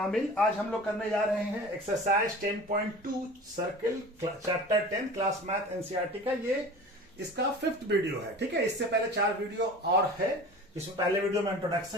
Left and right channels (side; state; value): both; normal; correlation 0.38